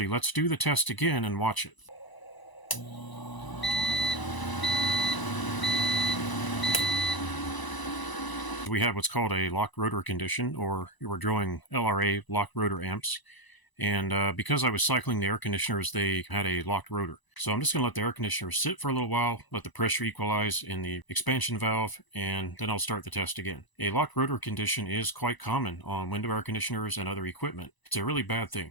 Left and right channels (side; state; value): right; late; 1.0 ms